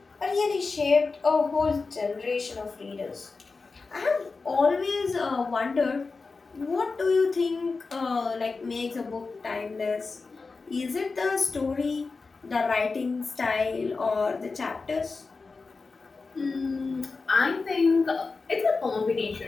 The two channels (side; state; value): right; quieter; 4.2 dB